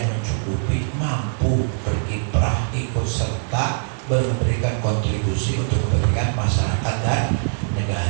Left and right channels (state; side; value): silent; left; digital silence